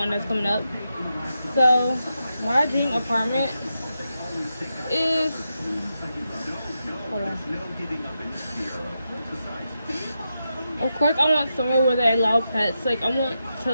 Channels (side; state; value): both; inverted; correlation -0.87